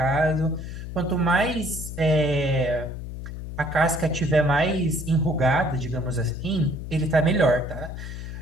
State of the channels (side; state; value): left; noise; hum, 8 dB below the sound